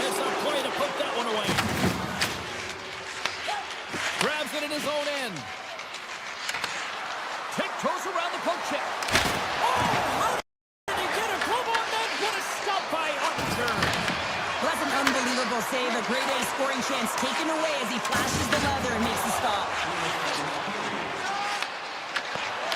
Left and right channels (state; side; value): identical; both; correlation 1.00